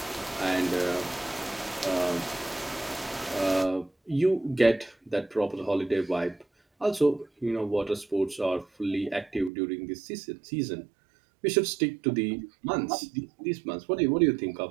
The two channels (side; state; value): left; drops out; at 9.5 s